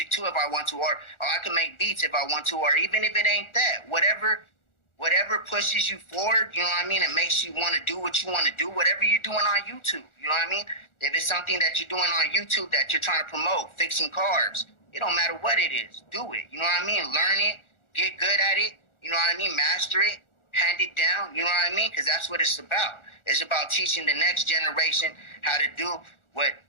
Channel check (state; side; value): late; right; 1.4 ms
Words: too if I want to, or I could make beats if I want to, or even if it ain't that, whatever pushes you forward, you know what I mean, and makes you want to do what you want to do, whatever you're doing on YouTube, you know what I mean? If it's something that you're doing on YouTube that you're trying to promote, fixing cars, it don't matter what it is, do it, you know what I mean? Learn it, get good at it, you know what I mean? Master it, hand it down, you know what I mean? Because that's what it's about. It's about teaching the next generation how to do what